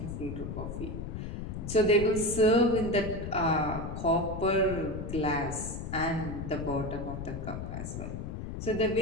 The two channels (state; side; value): noise; left; rumble, 6 dB below the sound